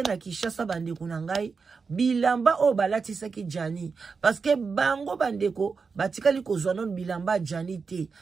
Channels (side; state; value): left; quieter; 5.1 dB